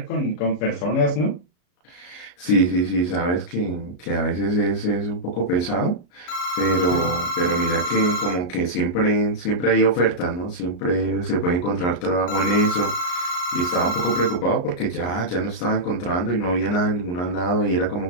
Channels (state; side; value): late; right; 34 ms